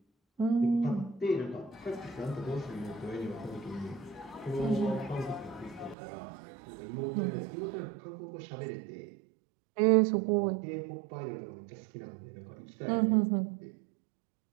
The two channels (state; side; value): drops out; left; at 6.0 s